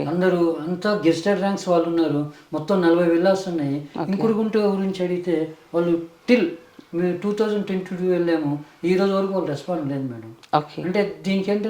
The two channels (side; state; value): both; identical; correlation 1.00